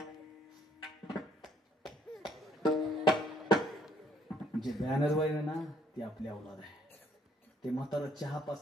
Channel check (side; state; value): both; normal; correlation 0.64